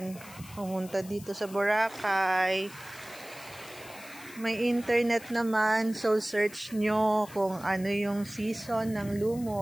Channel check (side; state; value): left; noise; hiss, 18 dB below the sound